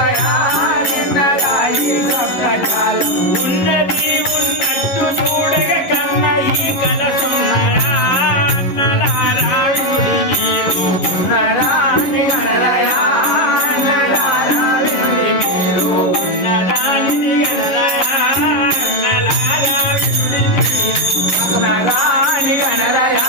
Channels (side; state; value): right; late; 11 ms